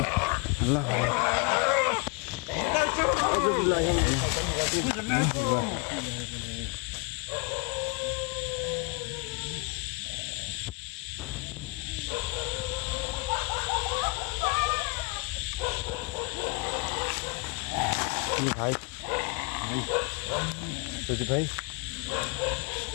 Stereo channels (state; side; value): quieter; right; 28.8 dB